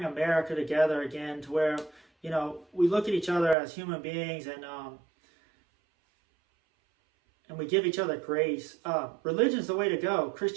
America together again to where, we look at each other as human beings and we give each other grace, religion's the way to go.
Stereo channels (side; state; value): left; drops out; at 3.6 s